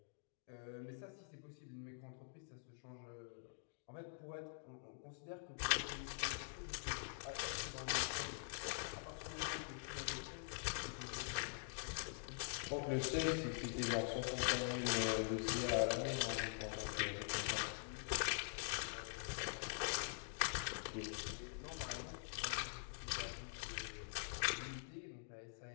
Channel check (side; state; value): right; silent; digital silence